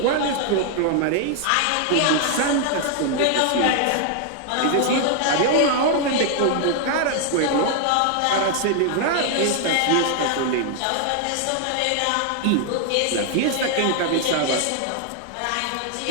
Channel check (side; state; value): both; different; correlation 0.00